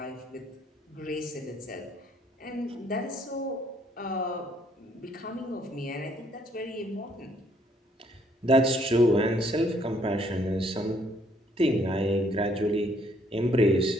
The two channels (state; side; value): normal; both; correlation 0.66